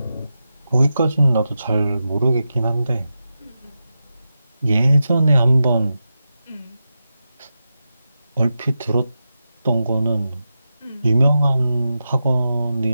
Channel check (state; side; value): inverted; both; correlation -0.90